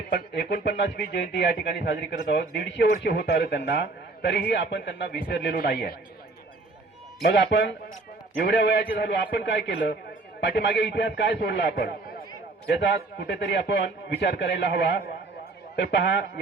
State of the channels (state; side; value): quieter; left; 3.4 dB